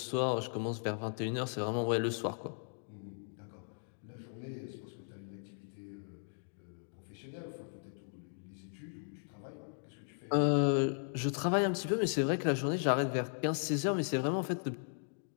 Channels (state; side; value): silent; right; digital silence